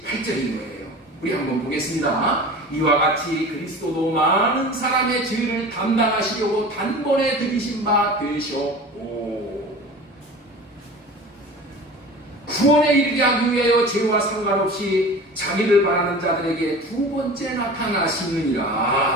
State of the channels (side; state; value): both; normal; correlation 0.37